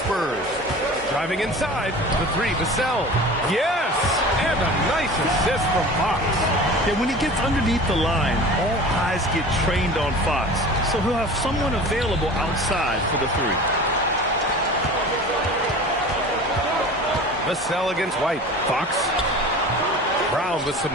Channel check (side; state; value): both; normal; correlation 0.38